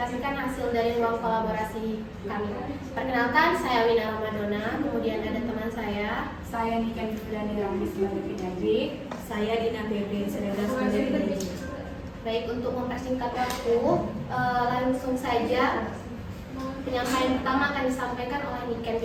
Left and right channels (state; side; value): identical; both; correlation 1.00